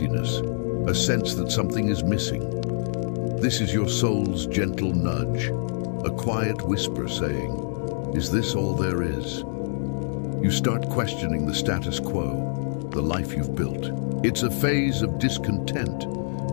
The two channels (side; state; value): right; silent; digital silence